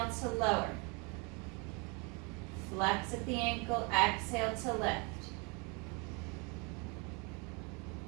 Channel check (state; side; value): quieter; left; 31.6 dB